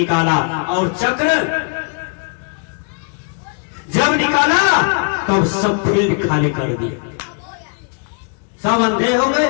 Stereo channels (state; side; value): quieter; right; 38.6 dB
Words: और चक्र जब निकाला तब सब फील्ड खाली कर दिया, सब अंधे हो गए,